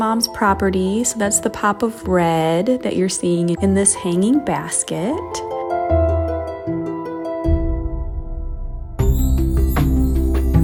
property. So that's the pop of red that you're seeing in this hanging basket.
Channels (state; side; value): identical; both; correlation 1.00